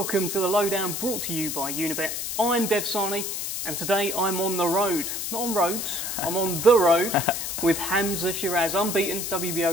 to the Lowdown, brought to you by Unibet. I'm Dev Sahni, and today I'm on the road. Not on roads, I'm on the road with Hamzah Sheeraz, unbeaten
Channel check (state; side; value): noise; left; hiss, 4 dB below the sound